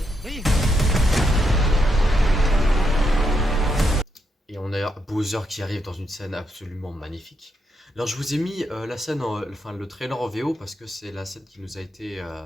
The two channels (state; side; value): normal; both; correlation 0.80